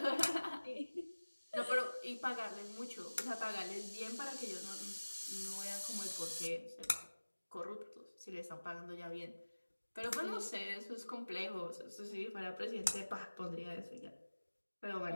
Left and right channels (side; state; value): both; inverted; correlation -1.00